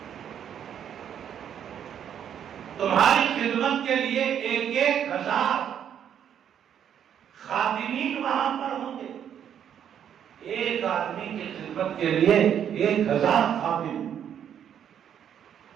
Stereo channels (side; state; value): left; quieter; 9.1 dB